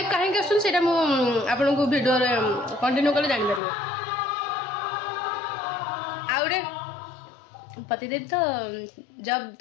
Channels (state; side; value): drops out; right; at 3.6 s